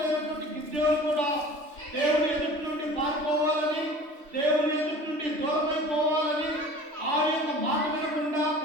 అయినటువంటి గిద్యోను కూడా దేవుని ఎదుటి నుండి పారిపోవాలని, దేవుని ఎదుటి నుండి దూరమైపోవాలని, ఆ యొక్క మాట వినకుండా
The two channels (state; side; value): late; left; 3.1 ms